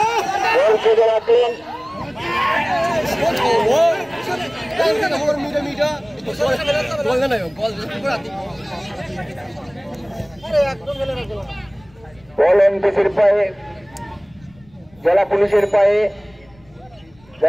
বল খেলে রাখেন। বল এনপিসির পায়ে, জেলা পুলিশের পায়ে,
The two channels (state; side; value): noise; left; rumble, 29 dB below the sound